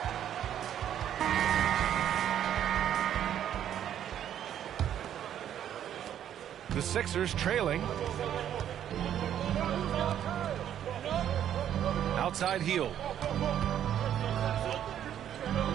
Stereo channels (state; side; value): quieter; left; 10.2 dB